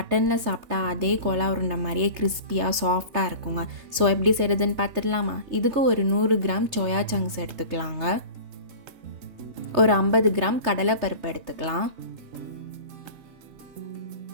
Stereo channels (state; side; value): late; left; 3.3 ms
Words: சாப்பிட்டா அதே கோலா உருண்டை மாதிரியே கிறிஸ்பியாக சாஃப்டாக இருக்குங்க. ஸோ எப்படி செய்கிறதுன்னு பார்த்துடலாமா? இதுக்கு ஒரு 100 கிராம் சோயா சங்க்ஸ் எடுத்துக்கலாங்க. ஒரு 50 கிராம் கடலைப்பருப்பு எடுத்துக்கலாம்.